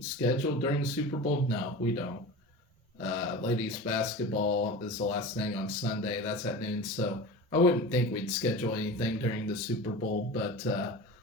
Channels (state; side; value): normal; both; correlation 0.32